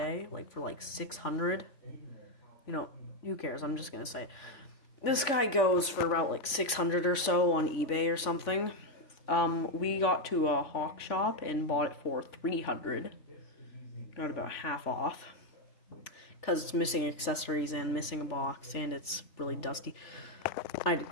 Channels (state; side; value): late; right; 3.5 ms